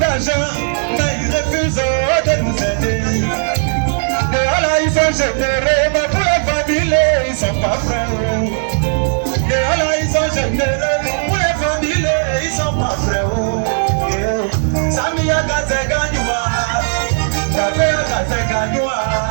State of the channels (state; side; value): silent; left; 69 dB below the other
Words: mais ils refusent de nous aider. Et là, ils sont généreux, mais pour les familles, ils sont pas prêts. Et là, ils sont généreux, pour les familles, ils sont pas prêts. Samia Gaze Ganywa, Tabea Gaze Ganywa,